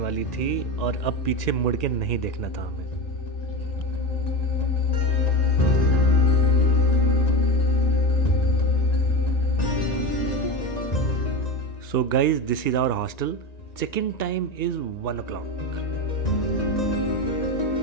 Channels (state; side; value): late; right; 1.9 ms